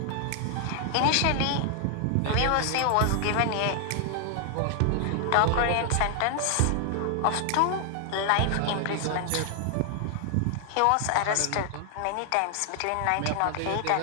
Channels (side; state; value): both; different; correlation 0.00